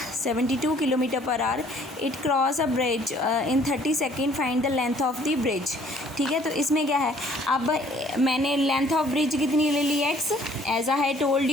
72 kilometre per hour, it cross a bridge in 30 second, find the length of the bridge, ठीक है। तो इसमें क्या है, अब मैंने लेंथ ऑफ ब्रिज कितनी ले ली x, as I told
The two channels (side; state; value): both; normal; correlation 0.59